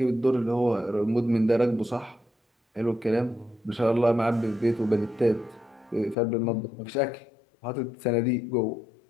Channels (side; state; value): right; drops out; at 6.2 s